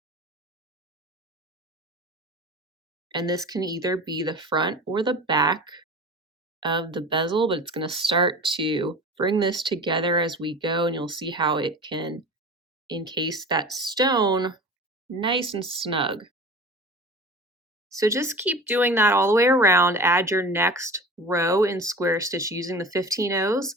And this can either be the front or the back of the bezel, but it's going to start to bring this together as we go, and you'll see how it can encase that stone nice and snug. So just keep doing that all the way around. Add your next row in square stitch using the 15 O's.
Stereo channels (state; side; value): normal; both; correlation 0.36